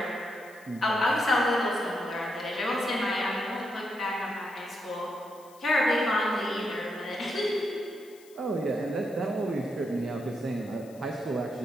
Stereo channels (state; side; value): noise; left; hiss, 25 dB below the sound